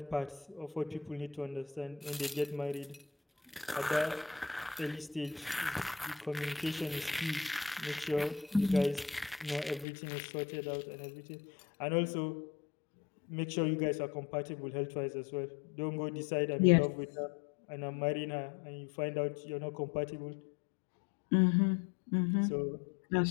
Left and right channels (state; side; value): drops out; right; at 9.9 s